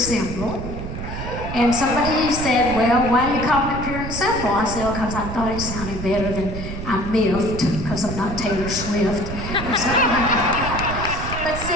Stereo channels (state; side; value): noise; right; rumble, 7 dB below the sound